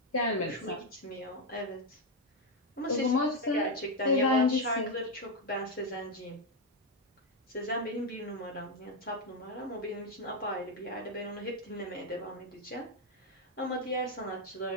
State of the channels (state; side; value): normal; both; correlation 0.05